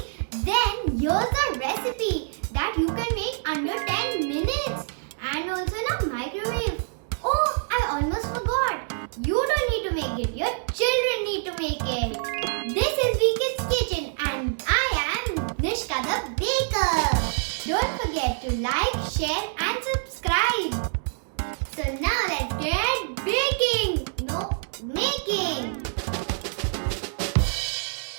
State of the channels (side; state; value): left; silent; 61 dB below the other